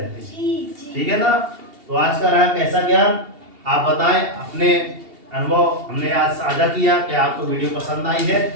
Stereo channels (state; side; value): late; left; 2.8 ms